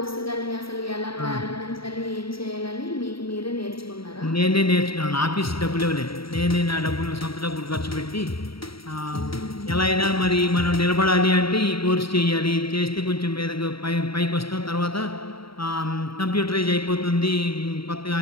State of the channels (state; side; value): late; right; 0.75 ms